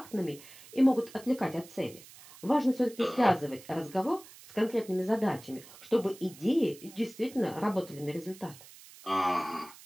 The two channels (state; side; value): noise; right; hiss, 20 dB below the sound